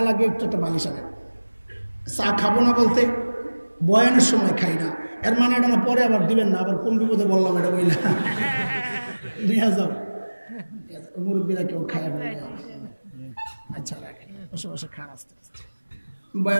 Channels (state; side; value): inverted; both; correlation -1.00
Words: লাগে একটু একটা বালিশ আনে। চা খাবো না বলতে বয়ানের সময় খাই না, এর মানে এটা না পরে আবার দিবেন না, আবার কোন বিপদে বললাম এটা বইলা নিয়ে যাও। মুরব্বীরা কেউ খায় আচ্ছা লাগে, বসে বসে খান আসতে আসতে।